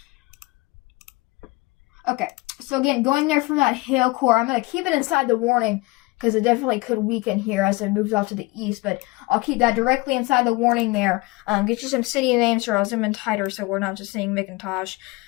Okay, so again, going there from that hail core, I'm gonna keep it inside the warning, because it definitely could weaken here as it moves off to the east, but I'll keep that directly inside the warning there. Get you some city names here. I'll zoom in tighter so we're not just seeing McIntosh.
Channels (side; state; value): right; quieter; 23.0 dB